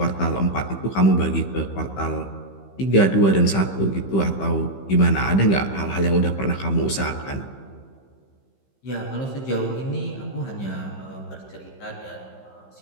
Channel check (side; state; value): right; late; 15 ms